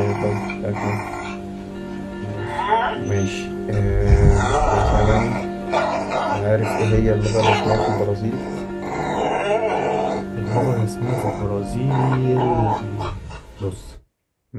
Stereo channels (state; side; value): identical; both; correlation 1.00